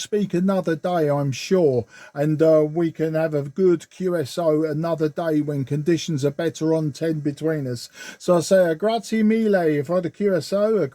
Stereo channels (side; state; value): both; identical; correlation 1.00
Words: another day, I'm sure. And we can have a good QSO another day when conditions are better on 10 between us. So I say a grazie mille for the QSO, a